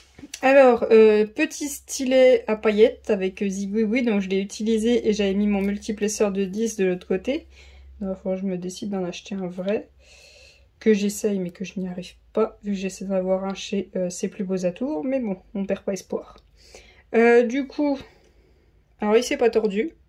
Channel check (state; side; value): identical; both; correlation 1.00